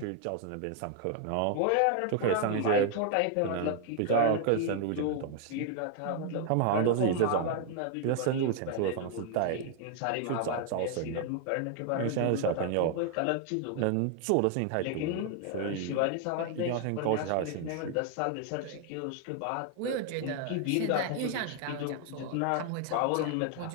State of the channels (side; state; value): both; different; correlation 0.00